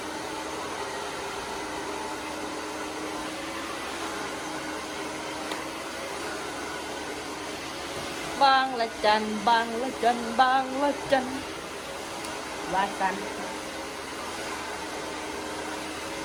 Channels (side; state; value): both; identical; correlation 1.00